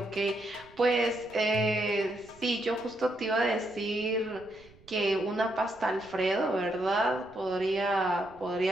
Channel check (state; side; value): noise; right; rumble, 25 dB below the sound